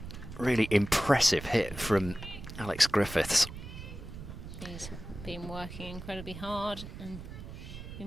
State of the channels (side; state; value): right; noise; rumble, 11 dB below the sound